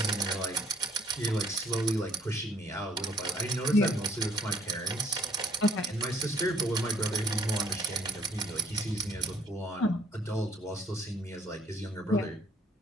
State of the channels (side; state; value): both; normal; correlation 0.65